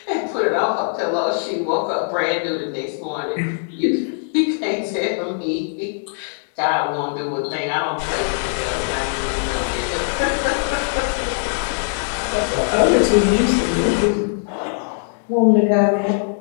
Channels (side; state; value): right; silent; digital silence